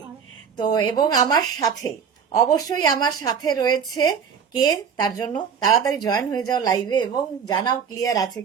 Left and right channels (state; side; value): quieter; left; 6.9 dB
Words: তো এবং আমার সাথে, অবশ্যই আমার সাথে রয়েছে কে, তার জন্য তাড়াতাড়ি জয়েন হয়ে যাও লাইভে এবং জানাও ক্লিয়ার আছে